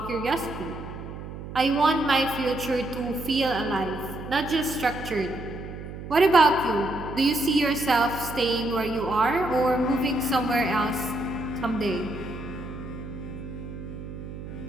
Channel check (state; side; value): noise; right; hum, 10 dB below the sound